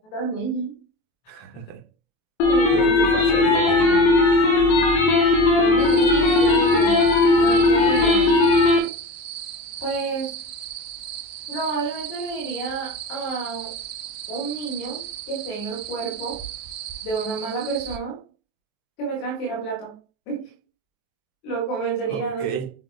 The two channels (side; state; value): right; late; 23 ms